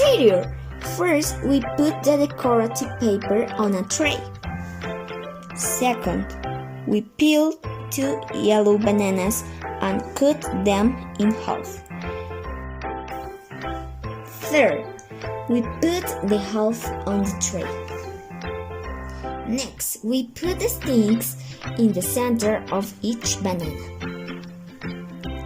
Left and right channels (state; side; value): identical; both; correlation 1.00